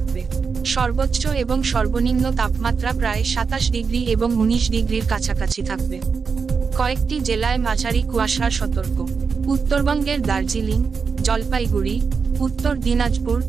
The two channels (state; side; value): quieter; left; 5.4 dB